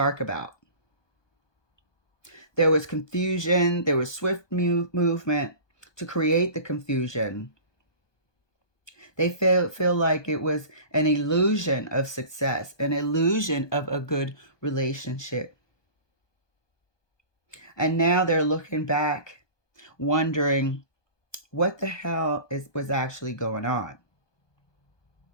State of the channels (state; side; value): late; right; 1.2 ms